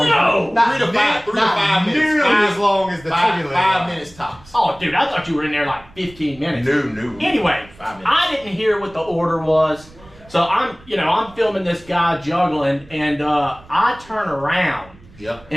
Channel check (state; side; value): noise; right; rumble, 24 dB below the sound